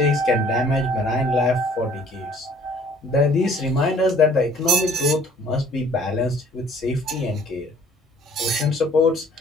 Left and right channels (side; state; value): both; normal; correlation 0.56